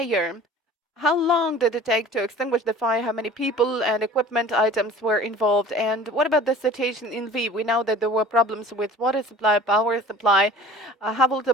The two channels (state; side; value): normal; both; correlation 0.45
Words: how long did it take to extinguish the fire? How many people and equipment items were involved? And what about the situation in Lviv? We know that there were problems with water supply, power supply. Have all the